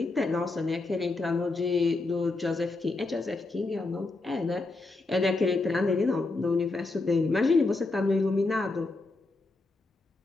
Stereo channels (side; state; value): right; quieter; 3.3 dB